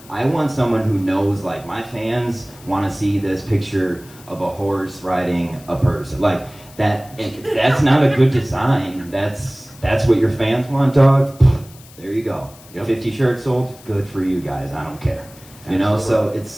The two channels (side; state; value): left; noise; hiss, 23 dB below the sound